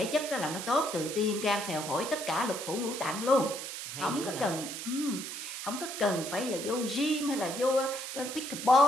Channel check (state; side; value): noise; right; hiss, 7 dB below the sound